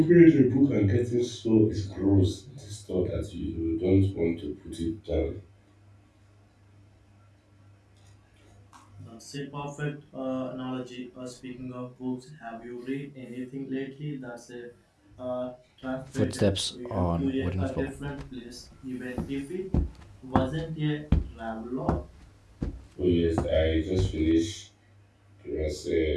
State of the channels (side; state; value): both; identical; correlation 1.00